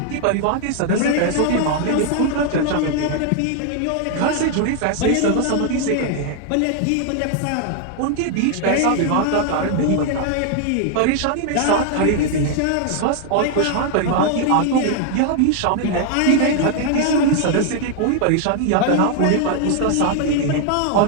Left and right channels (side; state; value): both; different; correlation 0.00